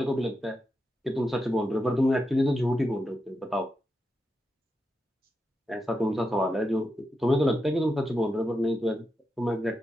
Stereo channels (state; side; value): normal; both; correlation 0.87